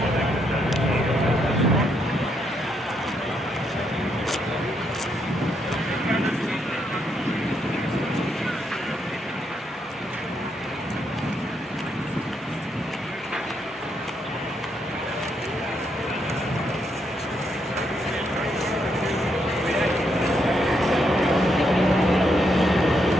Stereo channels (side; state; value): both; normal; correlation 0.77